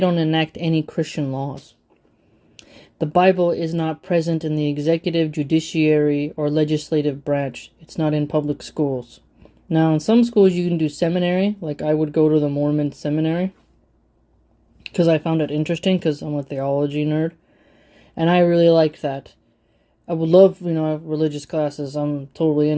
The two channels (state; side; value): identical; both; correlation 1.00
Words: enact any Christian laws. The Bible is not present in the executive, judiciary, or legislative branch. It's not in public schools. Now, in some schools you can do seminary, like I would go to the Mormon seminary, because I found it interesting, because I'm a theology nerd, and I really liked that. I would love, religious classes, I'm totally